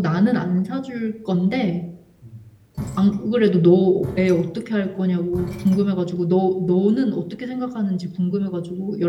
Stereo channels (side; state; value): both; identical; correlation 1.00